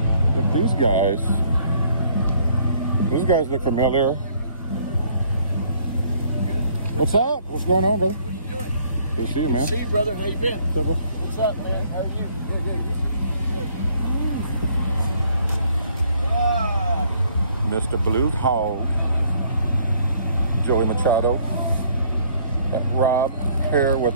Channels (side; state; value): both; inverted; correlation -0.62